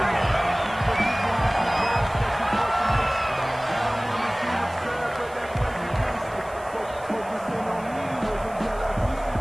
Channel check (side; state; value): right; noise; hiss, 23 dB below the sound